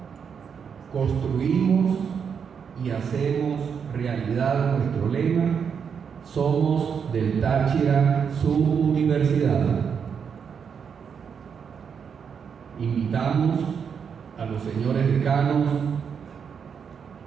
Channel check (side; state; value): left; quieter; 6.8 dB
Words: construimos y hacemos realidad nuestro lema: somos del Táchira su universidad. Invitamos a los señores decanos